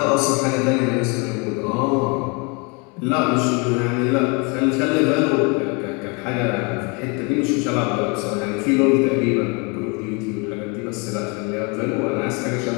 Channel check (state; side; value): quieter; right; 31.2 dB